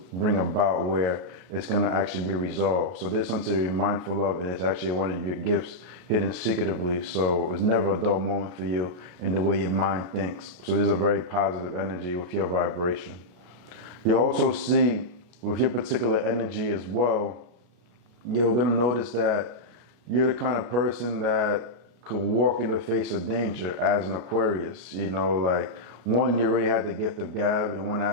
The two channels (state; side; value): late; left; 33 ms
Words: bring about where it's going to actually be resolved. So there's something to be mindful of, and it's actually one of your gifts hidden secretively. So it's never a dull moment for you in the way your mind thinks. So there's a very positive energy with your vibration. You also see with your particular energy as well, you're going to notice that you're the kind of person that could walk in the face of danger as an Aquarius. One, you already had the gift of gab in one